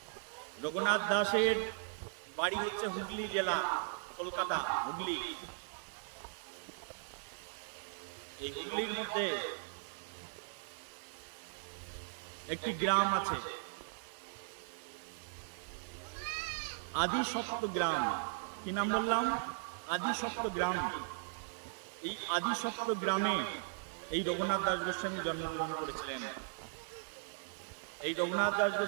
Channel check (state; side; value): silent; left; digital silence